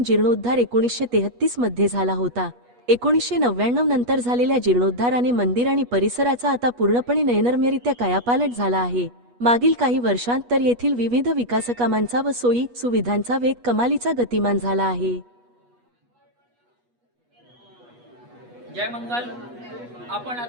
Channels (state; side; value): late; left; 8.3 ms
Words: जीर्णोद्धार 1933 मध्ये झाला होता। 1999 नंतर झालेल्या जीर्णोद्धाराने मंदिर आणि परिसराचा आता पूर्णपणे नयनरम्यरित्या कायापालट झाला आहे। मागील काही वर्षांत तर येथील विविध विकासकामांचा व सोयी सुविधांचा वेग कमालीचा गतिमान झाला आहे। जय मंगल। आपण